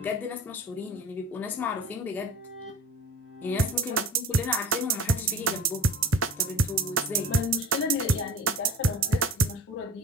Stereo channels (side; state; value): both; normal; correlation 0.37